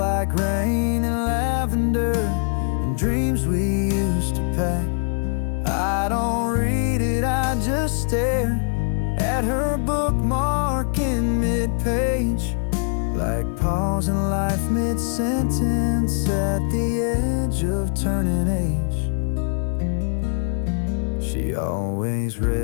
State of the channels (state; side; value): silent; right; 57 dB below the other